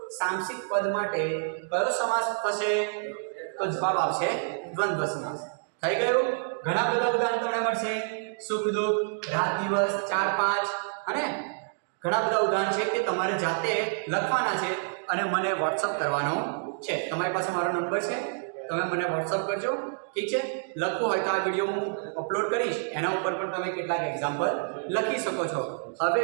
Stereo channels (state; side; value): silent; left; digital silence